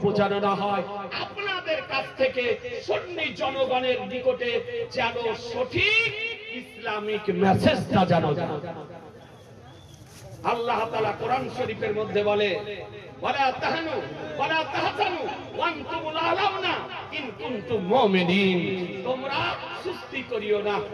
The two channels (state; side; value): identical; both; correlation 1.00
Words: যেন না হয়, আপনাদের কাছ থেকে সুন্নি জনগণের নিকটে যেন সঠিক ইসলামিক মেসেজটা যেন আল্লাহ তাআলা কোরআন শরীফের মধ্যে বলে, ওয়ালা তাহানু ওয়ালা তাহজানু ওয়া আনতুমুল আলাউনা ইন কুনতুম মুমিনিন। তোমরা সুস্তি করিও না,